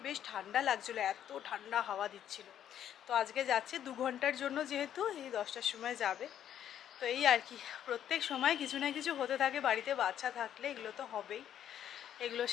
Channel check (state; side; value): quieter; right; 10.2 dB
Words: বেশ ঠান্ডা লাগছিলো, এত ঠান্ডা হাওয়া দিচ্ছিল। তো আজকে যাচ্ছে 2 ঘন্টার জন্য, যেহেতু এই 10টার সময় যাবে। তো এই আর কি, প্রত্যেক সময় কিছু না কিছু হতে থাকে বাড়িতে, বাচ্চা থাকলে এগুলো তো হবেই, এগুলোর